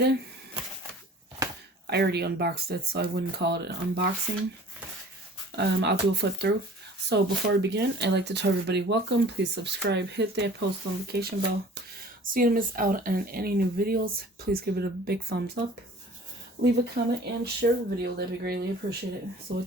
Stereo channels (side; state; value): both; normal; correlation 0.47